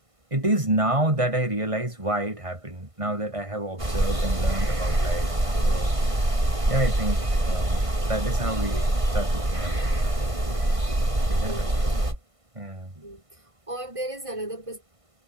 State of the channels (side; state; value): left; late; 1.5 ms